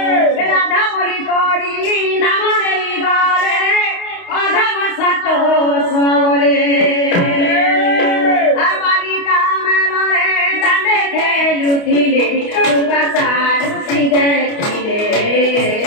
बोली करी नाम रे गले अधम सतो सोले आवाली कामल रे दांडे खेलुथिले दुर्वासारुसी देखिले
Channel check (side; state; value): right; late; 28 ms